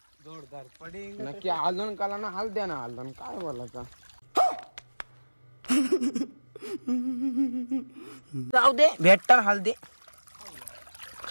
जोरदार पडिंग. नक्की हलदून काला ना हळद्या ना हलदून काय बोलायचा. जाऊ दे भेटतात हळदे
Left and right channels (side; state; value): both; inverted; correlation -1.00